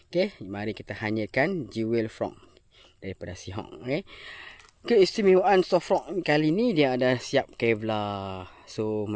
Okay. Mari kita hanyakan Jewel Frog daripada Seahawk. Okay. Keistimewaan soft rock kali ni dia ada siap Kevlar. So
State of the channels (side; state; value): both; identical; correlation 1.00